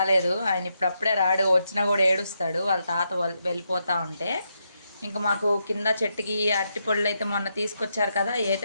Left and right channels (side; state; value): both; inverted; correlation -0.81